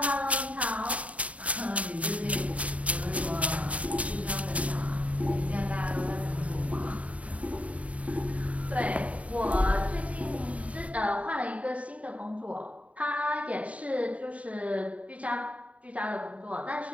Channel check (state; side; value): late; left; 0.067 ms